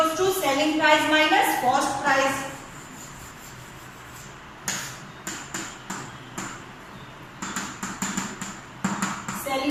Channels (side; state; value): both; identical; correlation 1.00